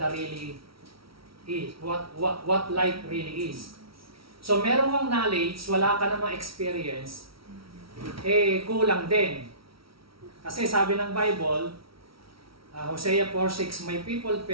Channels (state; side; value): late; left; 0.75 ms